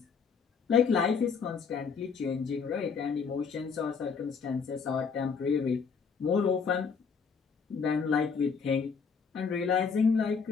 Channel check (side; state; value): right; quieter; 5.7 dB